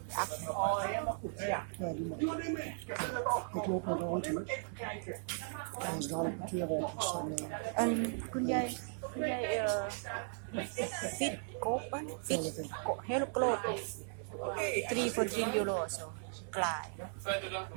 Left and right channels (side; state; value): left; silent; digital silence